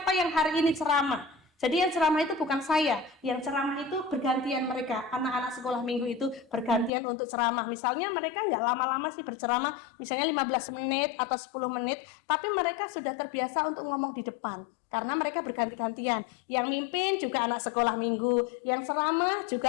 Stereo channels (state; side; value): drops out; right; at 6.9 s